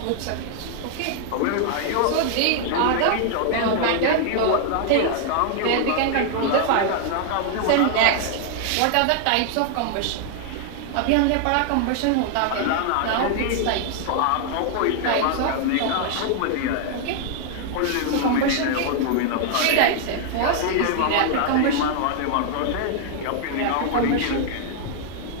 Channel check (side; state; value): both; different; correlation 0.00